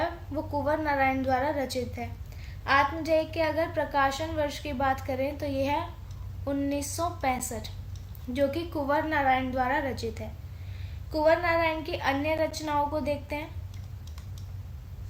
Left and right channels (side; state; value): both; identical; correlation 1.00